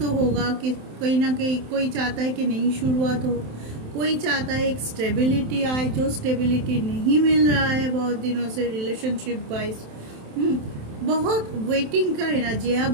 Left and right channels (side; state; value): left; late; 27 ms